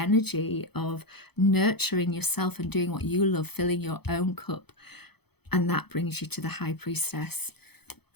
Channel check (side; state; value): right; late; 0.98 ms